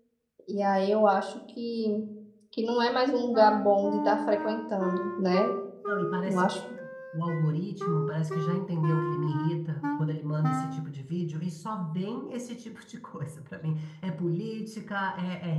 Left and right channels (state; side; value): identical; both; correlation 1.00